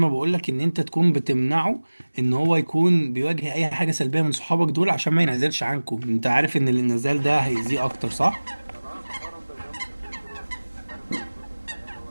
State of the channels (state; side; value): inverted; both; correlation -1.00